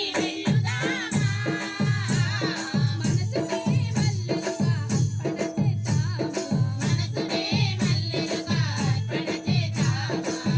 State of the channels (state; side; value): identical; both; correlation 1.00